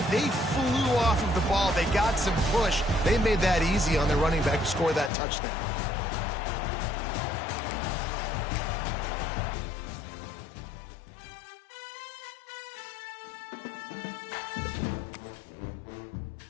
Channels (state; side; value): drops out; right; at 5.1 s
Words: They flew off of the ball. They got some push. They made that easy on their running back to score that touchdown.